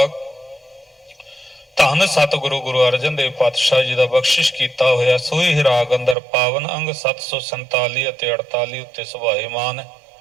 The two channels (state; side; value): drops out; left; at 6.2 s